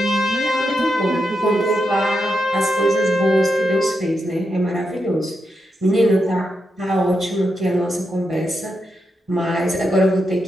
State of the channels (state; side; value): normal; both; correlation 0.85